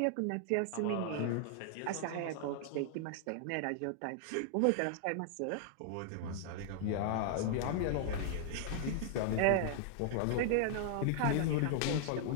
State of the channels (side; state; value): both; different; correlation -0.01